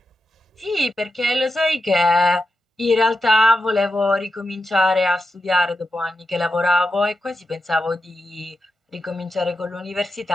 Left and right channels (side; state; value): both; normal; correlation 0.88